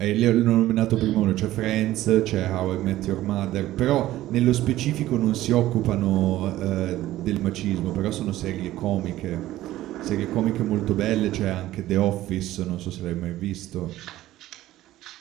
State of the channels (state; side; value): quieter; left; 15.1 dB